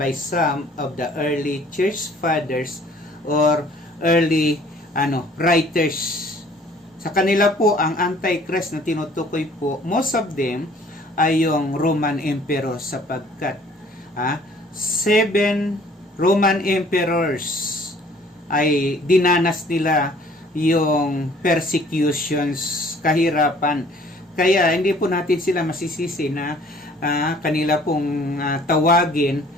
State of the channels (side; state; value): both; normal; correlation 0.55